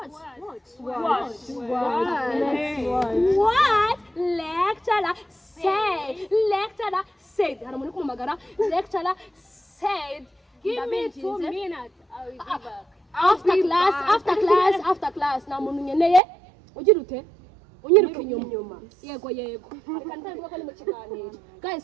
What lecturer said? Lecturer said. Hari umuntu kumagara. Lecturer said. Give me 2 minutes. I will be back. After class. Na muntu nyeneye. Ugira ute? Unyiruka inyuma. Yego. Reka ntangira ko ni mu kiganiro.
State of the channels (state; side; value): drops out; left; at 16.2 s